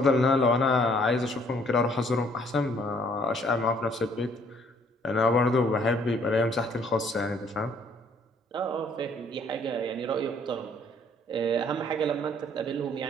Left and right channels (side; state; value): both; normal; correlation 0.62